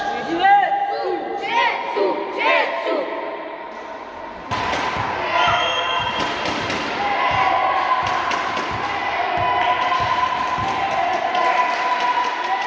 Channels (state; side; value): identical; both; correlation 1.00